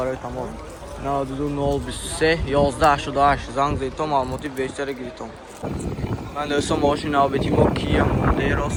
тамос 92023 1188 занг зинтон маълумоти бештари гиритон ман дӯстон мошини Optima Kia Mondeo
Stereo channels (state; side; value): identical; both; correlation 1.00